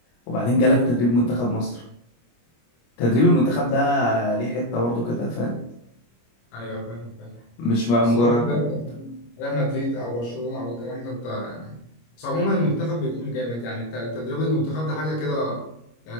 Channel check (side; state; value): right; late; 25 ms